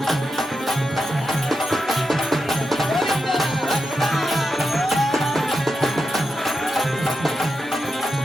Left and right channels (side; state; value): both; normal; correlation 0.88